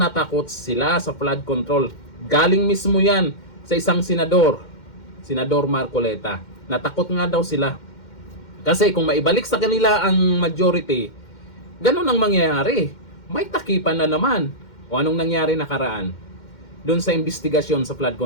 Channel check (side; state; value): right; late; 2.1 ms